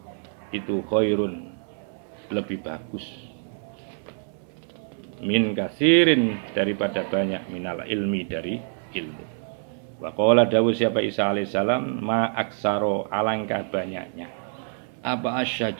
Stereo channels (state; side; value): silent; left; 61 dB below the other